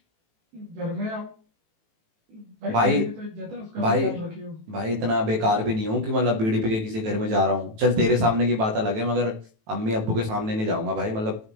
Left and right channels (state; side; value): late; left; 18 ms